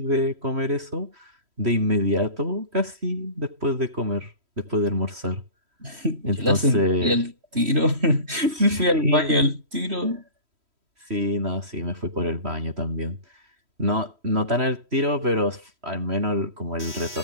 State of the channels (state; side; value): late; left; 3.1 ms